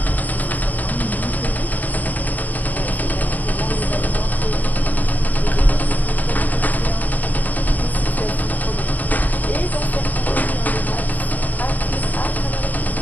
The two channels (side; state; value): right; late; 0.081 ms